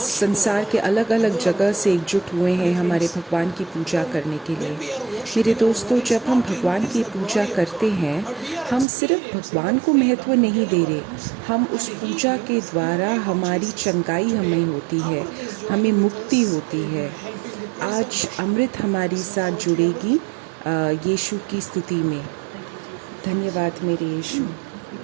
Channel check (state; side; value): drops out; left; at 8.8 s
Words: के अलग अलग जगह से एकजुट हुए हैं हमारे भगवान की पूजा करने के लिए। मेरे दोस्तों, जब हम भगवान की पूजा करते हैं, हम सिर्फ भगवान को महत्व नहीं दे रहे, हम उस पूजा के द्वारा हमारी चंगाई हमें होती है, हमें मुक्ति होती है। आज अमृत हमारी साथ जुड़ेगी यीशु की स्तुति में। धन्यवाद मेरे यीशु।